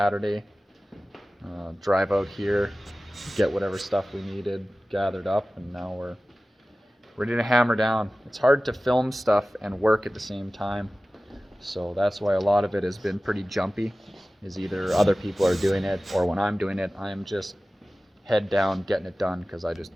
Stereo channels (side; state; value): both; normal; correlation 0.97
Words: Drive out here, get whatever stuff we needed gathered up, and now we're ready to hammer down. It's hard to film stuff and work at the same time, so that's why a lot of it has been pretty jumpy. Is either other people are doing it, or when I'm doing it, I'm just head down getting it done because I just